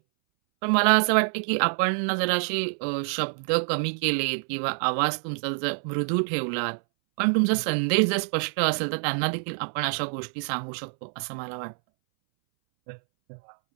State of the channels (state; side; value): silent; left; 61 dB below the other